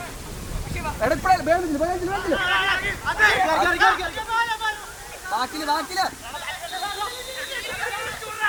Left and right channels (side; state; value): both; identical; correlation 1.00